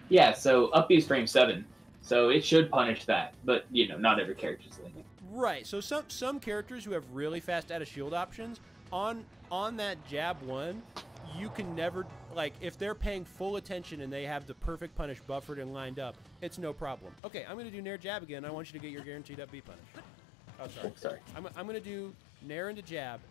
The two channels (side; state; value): right; drops out; at 17.2 s